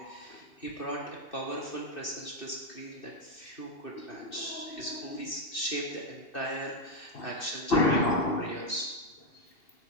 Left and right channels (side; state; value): right; late; 2.6 ms